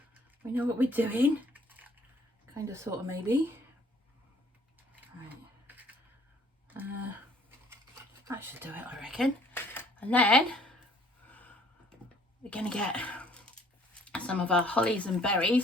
We know what we're doing. Kind of, sort of, maybe. Right. That should do it, I reckon. And then we're going to get some of our hollies and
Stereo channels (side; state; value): both; normal; correlation 0.59